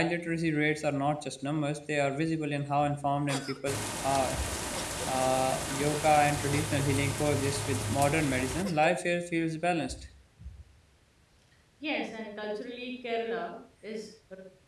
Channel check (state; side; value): identical; both; correlation 1.00